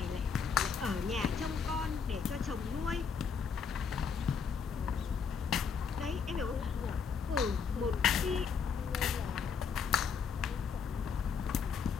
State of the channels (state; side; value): quieter; right; 6.1 dB